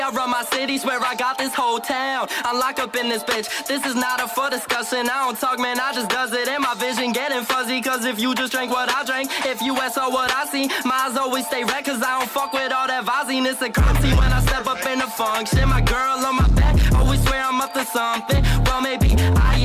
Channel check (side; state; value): both; identical; correlation 1.00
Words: run my city, swear I got this whole town. I'm locked up in this bitch, this is not up for discussion. I don't talk, man, I just does it. And my vision getting fuzzy, cause if you just drank what I drank, if you saw what I see, my eyes always stay red, cause I don't fuck with all that Vaziness and currency. When I step up in the function, my girl on my back always swear I'm up to something. Well, maybe I